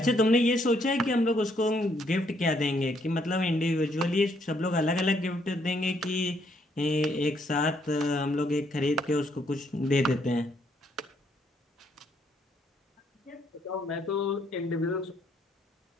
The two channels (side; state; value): both; normal; correlation 0.71